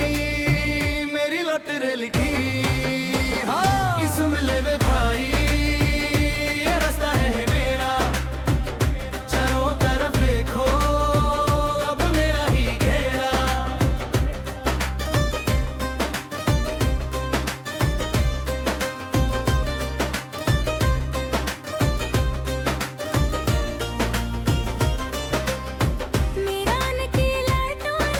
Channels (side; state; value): both; identical; correlation 1.00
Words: मेरी लॉटरी लिखी हाँ कि सुन ले वे भाई ये रास्ता है मेरा चारों तरफ देखो अब मेरा ही घेरा मेरा नकीला